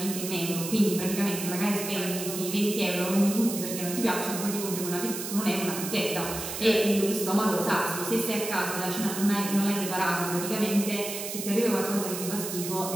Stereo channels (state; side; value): noise; right; hiss, 6 dB below the sound